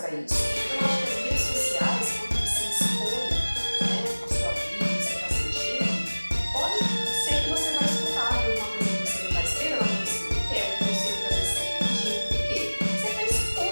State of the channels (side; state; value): both; inverted; correlation -1.00